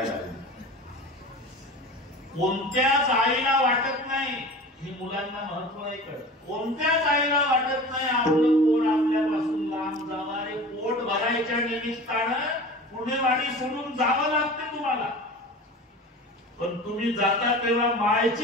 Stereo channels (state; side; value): normal; both; correlation 0.36